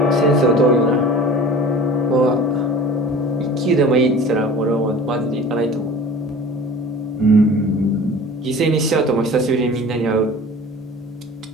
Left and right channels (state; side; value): normal; both; correlation 0.41